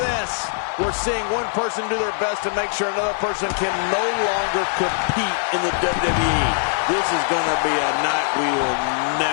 We're seeing one person do their best to make sure another person can no longer compete in the WWE. This is going to be a night we will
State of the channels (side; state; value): right; silent; digital silence